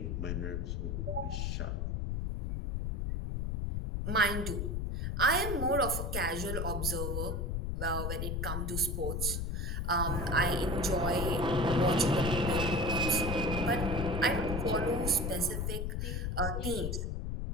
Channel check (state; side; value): noise; left; rumble, 1 dB below the sound